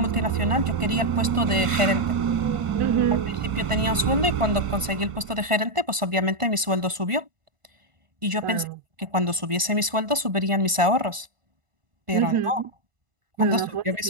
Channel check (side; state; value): left; late; 1.5 ms